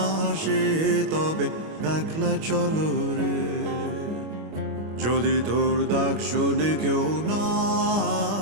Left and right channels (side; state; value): left; late; 25 ms